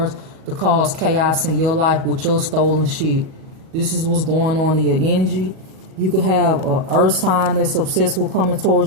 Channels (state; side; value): late; left; 37 ms